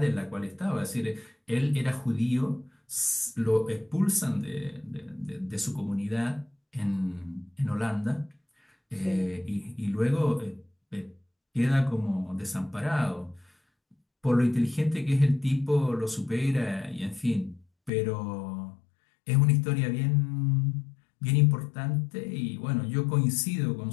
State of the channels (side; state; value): right; drops out; at 17.9 s